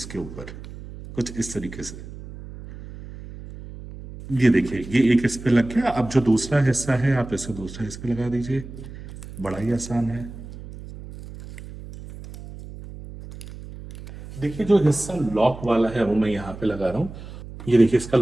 ऊपर, कुछ इस तरीके से। ये देखिए, ये एक इस पे लग गया। अब जो दूसरा हिस्सा है आप इसे दूसरा इस पे लगा दीजिए। बड़ा ही आसान है। देखिए, जो हिस्सा लॉक वाला है वो मैं यहाँ पे लगा रहा हूँ। ये देखिए, इसका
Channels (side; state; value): right; noise; hum, 14 dB below the sound